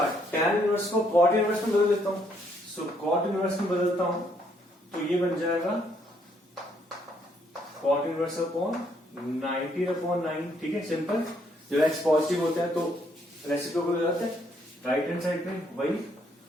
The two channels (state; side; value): normal; both; correlation 0.70